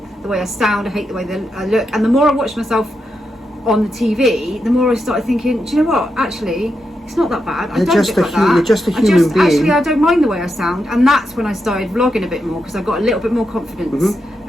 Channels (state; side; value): normal; both; correlation 0.85